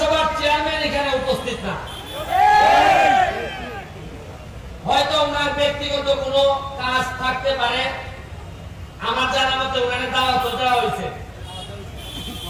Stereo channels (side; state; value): both; identical; correlation 1.00